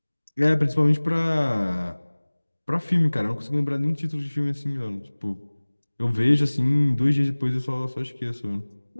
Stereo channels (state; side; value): inverted; both; correlation -1.00